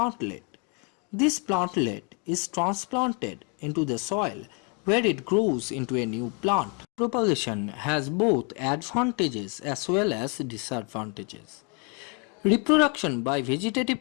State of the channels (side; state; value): right; quieter; 35.0 dB